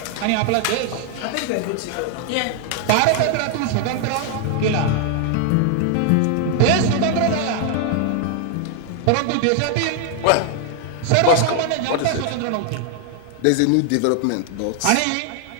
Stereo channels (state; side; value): different; both; correlation 0.00